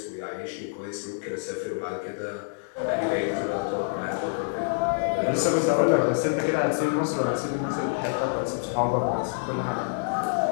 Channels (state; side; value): silent; right; digital silence